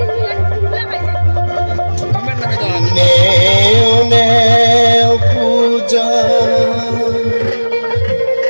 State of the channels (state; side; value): inverted; both; correlation -1.00